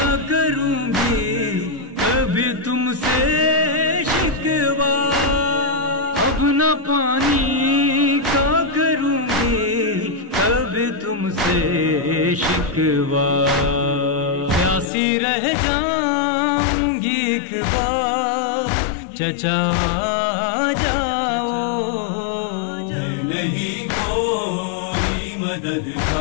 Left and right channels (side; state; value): right; drops out; at 14.9 s